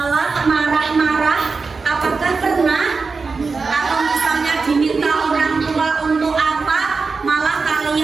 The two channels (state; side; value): quieter; left; 4.5 dB